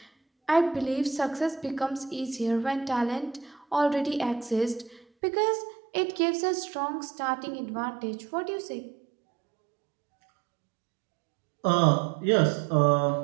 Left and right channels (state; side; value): drops out; left; at 5.1 s